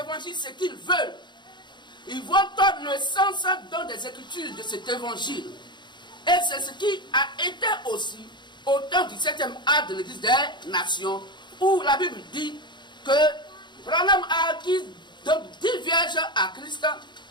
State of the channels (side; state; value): right; late; 0.22 ms